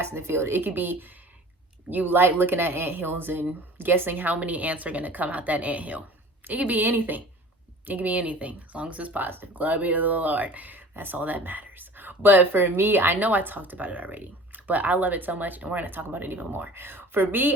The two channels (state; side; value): normal; both; correlation 0.43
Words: in the field. It could be you like looking at anthills and guessing how many ants are going to come out that anthill. It could be anything. It could be anything, as long as it's positive. Glory be to the Lord. That's all that matters. But for me, I know I talked about it already, but I love it so much, and we're going to talk about it even more. For